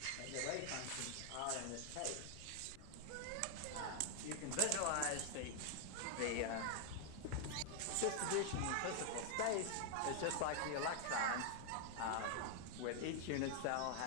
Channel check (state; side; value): different; both; correlation 0.00